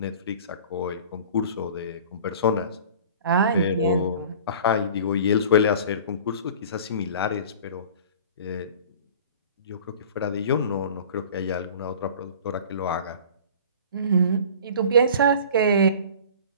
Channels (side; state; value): both; inverted; correlation -0.43